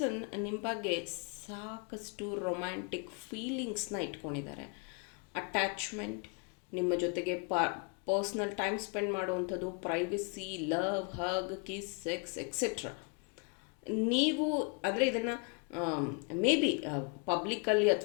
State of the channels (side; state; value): right; quieter; 35.5 dB